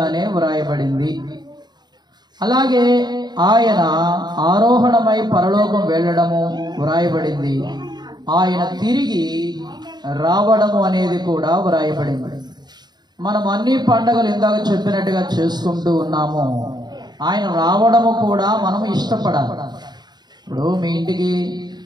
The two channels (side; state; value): left; late; 0.20 ms